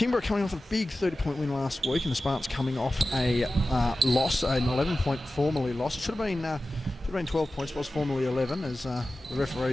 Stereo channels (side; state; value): both; normal; correlation 0.95